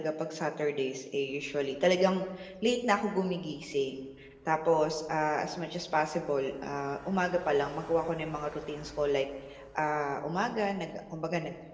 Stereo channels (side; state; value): both; identical; correlation 1.00